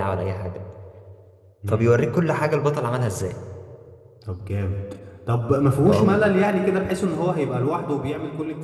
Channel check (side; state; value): both; identical; correlation 1.00